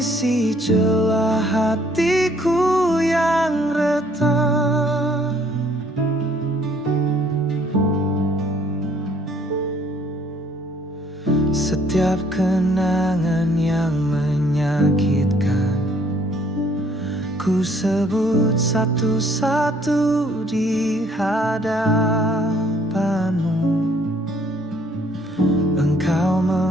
celah hatiku yang retak. Setiap kenangan yang menyakitkan ku sebut satu-satu di hadapan-Mu. Engkau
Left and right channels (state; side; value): normal; both; correlation 0.62